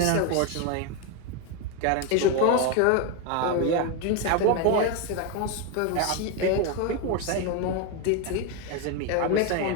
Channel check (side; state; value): both; different; correlation 0.02